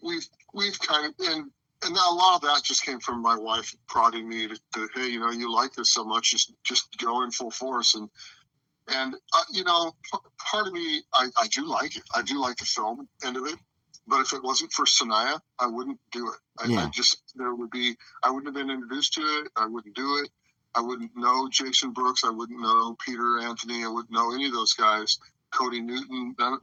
kind of, and now a lot of that just came from my wife prodding me to hey, you like this so much, just go in full force. And part of me, I do like it. I do like the film end of it. But if it wasn't for Sanaya, I wouldn't do it. I wouldn't have been introduced to it. I wouldn't do it. I wouldn't know Jason Brooks. I wouldn't know Peter Anthony. I wouldn't know any of those guys. Cody Newton,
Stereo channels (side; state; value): both; identical; correlation 1.00